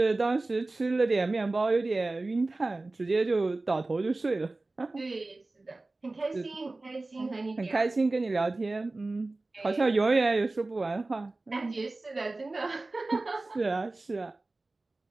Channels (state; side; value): quieter; left; 3.1 dB